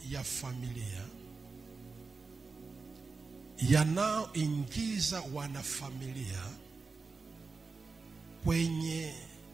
ya familia yanayoingiza wanafamilia kwenye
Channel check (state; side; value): quieter; left; 4.3 dB